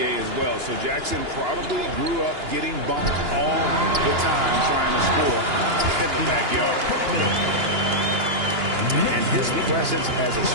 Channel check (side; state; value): left; late; 2.9 ms